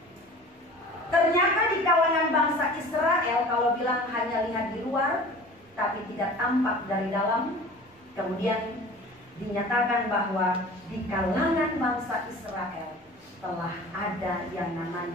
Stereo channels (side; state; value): both; normal; correlation 0.42